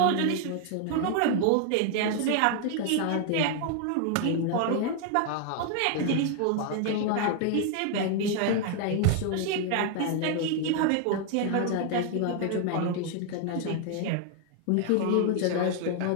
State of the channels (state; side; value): different; both; correlation 0.00